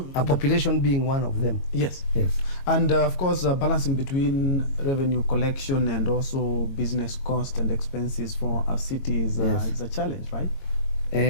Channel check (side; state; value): right; late; 22 ms